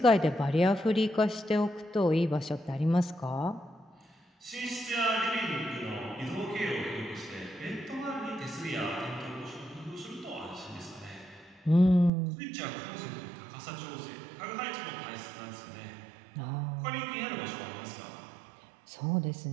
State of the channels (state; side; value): drops out; left; at 12.1 s